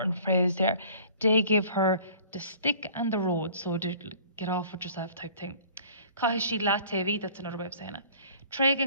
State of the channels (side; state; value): both; inverted; correlation -0.49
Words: phrase there. They give her the stick and the road, so to get off with yourself type thing. Kahishi Latevi, that's another way of saying it.